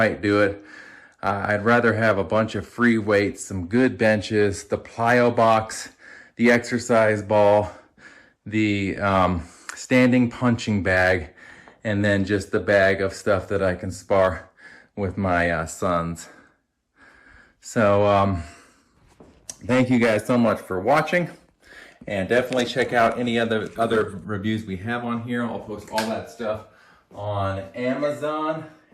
do it. I'd rather have a bunch of free weights, some good benches, the plyo box, the exercise ball, the standing punching bag, and then just the bag of stuff that I can spar with my sons. So thank you guys so much for watching, and definitely check out any other reviews we have on here. I'll post all that stuff on Amazon,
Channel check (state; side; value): identical; both; correlation 1.00